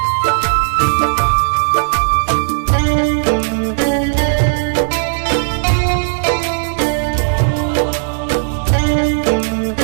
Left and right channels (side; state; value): left; silent; digital silence